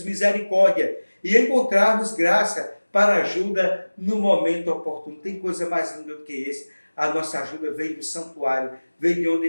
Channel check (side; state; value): both; inverted; correlation -1.00